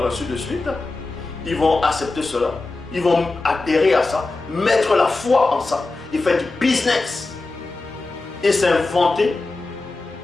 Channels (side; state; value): right; quieter; 3.4 dB